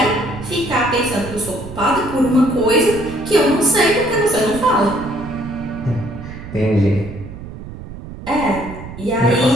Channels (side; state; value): right; noise; rumble, 12 dB below the sound